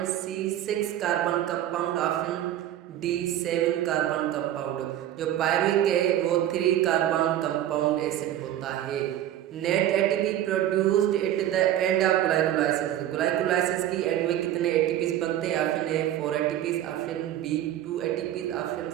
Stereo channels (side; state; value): left; quieter; 12.2 dB